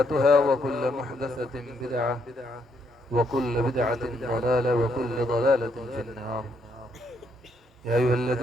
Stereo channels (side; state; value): both; normal; correlation 0.74